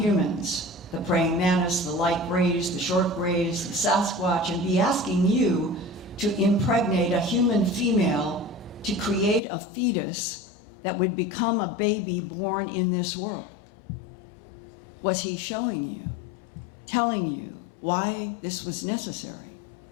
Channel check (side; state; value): right; drops out; at 9.4 s